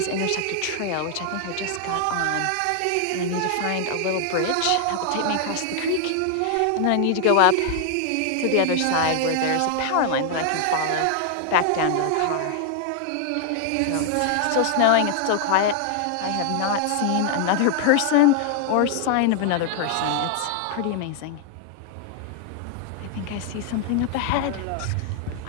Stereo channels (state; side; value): different; both; correlation 0.00